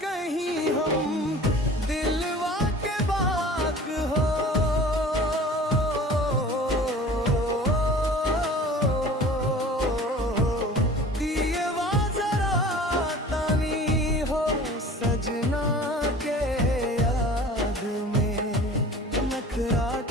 कहीं हम दिलवा के बात हो दिएवा जरा तानी हो सजना के याद में नखरा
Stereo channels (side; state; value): both; normal; correlation 0.43